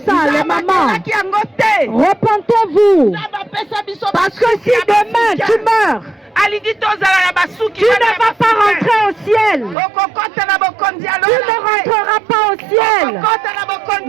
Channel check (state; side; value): drops out; left; at 9.8 s